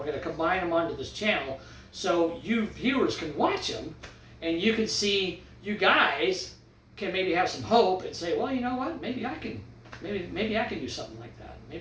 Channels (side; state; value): both; identical; correlation 1.00